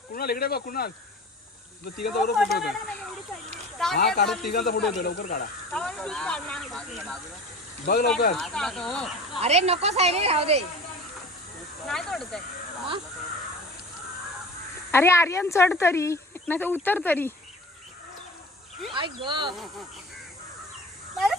इकडे बघ कुणाल. तिघांचा फोटो होतो. हा काढा तिघांचा फोटो होतो. लवकर काढा. बघ लवकर. अरे नको सायरे राहू दे. अरे आर्यन चढ तरी नाही तर उतर तरी. बरं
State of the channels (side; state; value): both; normal; correlation 0.38